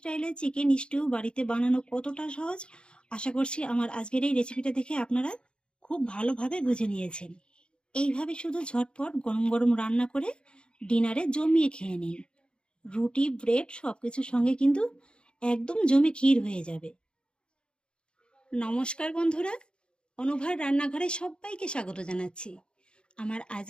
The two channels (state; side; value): late; right; 0.053 ms